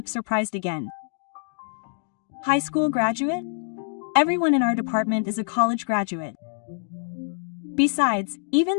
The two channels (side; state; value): right; silent; digital silence